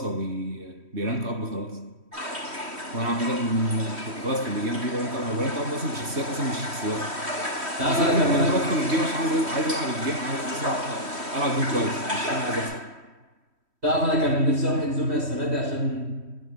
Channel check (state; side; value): late; left; 3.1 ms